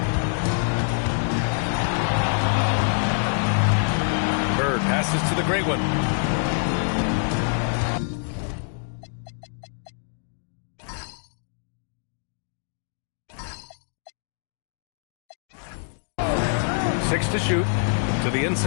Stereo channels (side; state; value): right; silent; digital silence